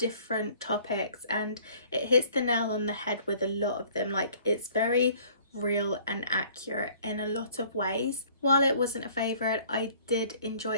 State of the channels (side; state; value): both; inverted; correlation -0.55